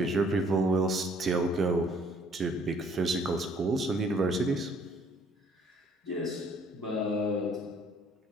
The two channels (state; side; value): normal; both; correlation 0.60